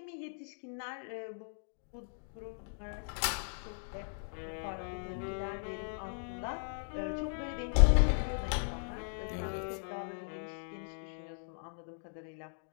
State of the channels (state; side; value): silent; right; digital silence